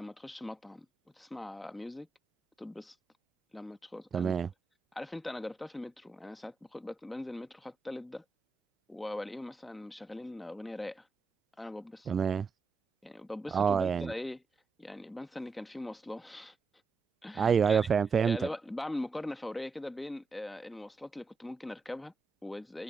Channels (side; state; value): left; quieter; 4.5 dB